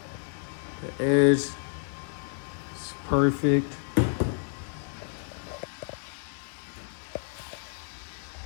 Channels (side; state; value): right; silent; digital silence